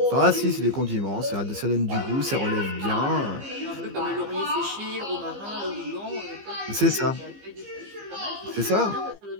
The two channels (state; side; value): late; left; 15 ms